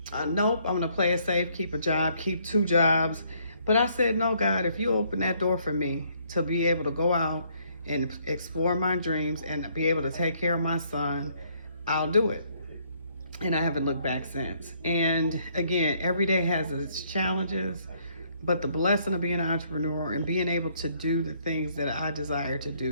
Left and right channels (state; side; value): inverted; both; correlation -0.67